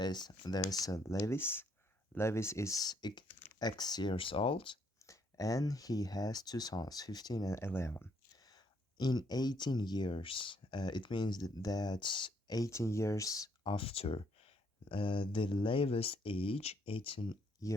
there's a Levis. Levis is X years old and he has two sons, 15 and 11. In 18 years, it means that that's 18 years after the latest age, 18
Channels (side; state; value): both; normal; correlation 0.70